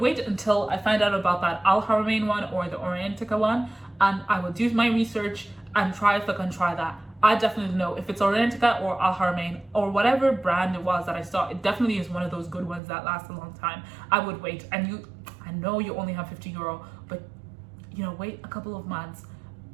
until I find out about that Al Haramain one or the Oriental one, and I will do my research and try if I can try that. I definitely know if it's Oriental or Al Haramain or whatever brand it was that I saw, it definitely is one of those good ones that last a long time. I would wait. And I know you only have €50, but you know, wait a couple of months,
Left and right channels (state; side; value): drops out; left; at 12.8 s